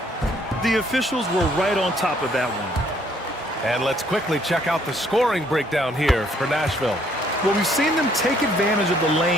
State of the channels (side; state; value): both; normal; correlation 0.65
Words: The officials were right on top of that one. And let's quickly check out the scoring breakdown here for Nashville. Well, we've seen them take advantage of the